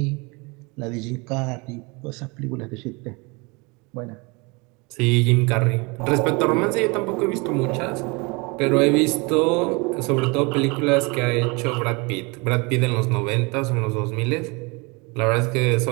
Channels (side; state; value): left; quieter; 28.2 dB